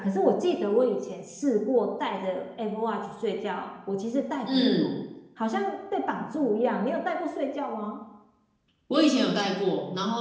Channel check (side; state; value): both; identical; correlation 1.00